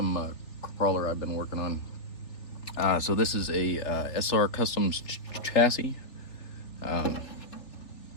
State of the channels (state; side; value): late; right; 3.4 ms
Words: crawler I've been working on. So this is a SR Customs chassis,